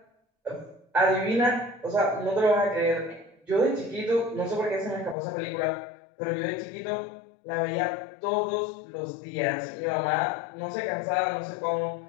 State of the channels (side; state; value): right; drops out; at 5.2 s